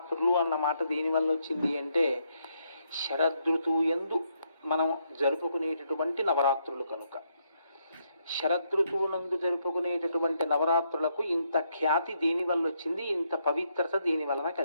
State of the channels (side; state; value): both; inverted; correlation -0.76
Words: అన్న మాట దేనివల్ల వచ్చింది అంటే శరదృతువు యందు మనం జరుపుకునేటటువంటి నవరాత్రులు కనుక. శరదృతువునందు జరుపుకునేటటువంటి నవరాత్రులకు ఇంత ఖ్యాతి దేనివల్ల వచ్చింది, ఇంత పవిత్రత దేని వలన